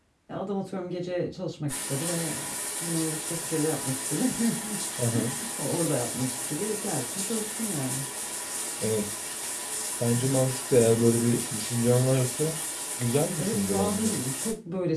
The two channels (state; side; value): identical; both; correlation 1.00